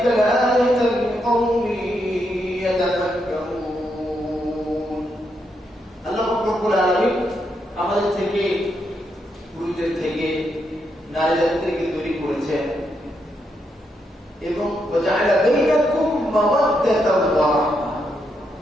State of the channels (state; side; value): normal; both; correlation 0.80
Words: لَآيَةً لِقَوْمٍ يَتَفَكَّرُونَ। আল্লাহ পাক রব্বুল আলামিন আমাদের থেকে, পুরুষদের থেকে, নারীদের থেকে তৈরি করেছেন এবং ওয়াজআলা বাইনাকুম মাওয়াদ্দাতাও ওয়া রাহমা,